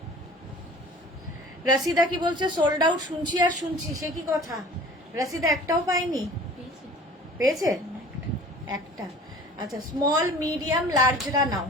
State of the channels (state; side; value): normal; both; correlation 0.45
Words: রাশিদা কি বলছে? সোল্ড আউট শুনছি আর শুনছি, সে কি কথা? রাশিদা একটাও পাইনি, পেয়েছে একটা। আচ্ছা, স্মল মিডিয়াম লার্জরা নাও।